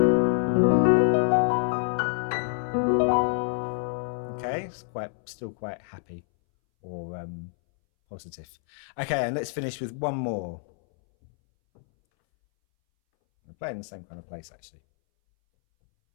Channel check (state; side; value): silent; right; 60 dB below the other